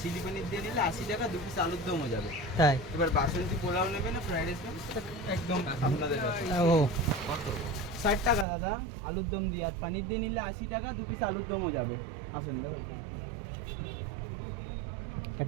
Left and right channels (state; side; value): drops out; left; at 8.5 s